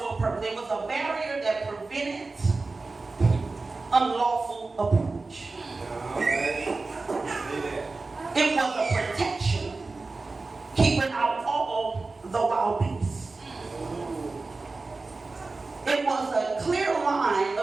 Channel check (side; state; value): left; quieter; 3.7 dB